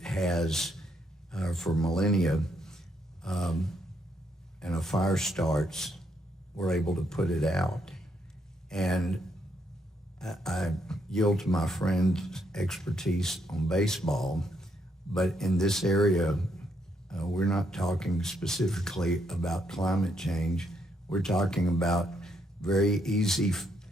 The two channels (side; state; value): both; normal; correlation 0.76